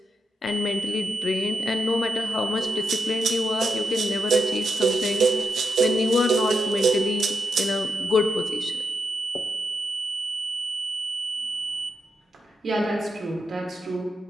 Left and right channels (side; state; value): both; normal; correlation 0.85